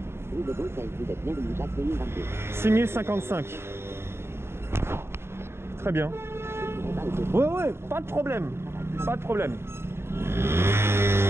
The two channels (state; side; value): late; left; 0.12 ms